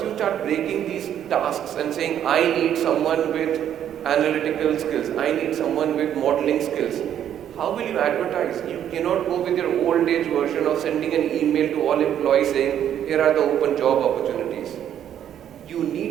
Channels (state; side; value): quieter; left; 10.1 dB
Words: you start breaking these tasks and saying, I need someone with analytical skills, I need someone with modeling skills, how will you advertise? You cannot go with your old age version of sending an email to all employees saying, here are the open job opportunities. You